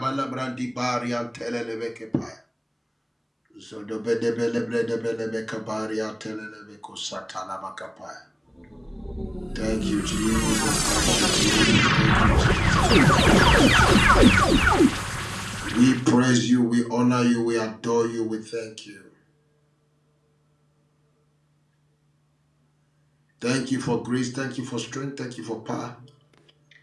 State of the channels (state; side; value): identical; both; correlation 1.00